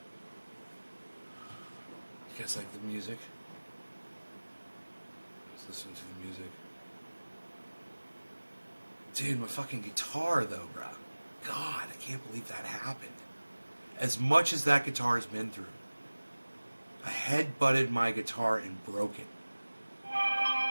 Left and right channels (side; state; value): both; inverted; correlation -1.00